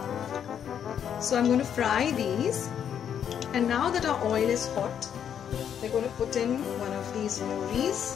So I'm going to fry these, and now that our oil is hot, we're going to put in one of these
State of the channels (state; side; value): quieter; right; 8.7 dB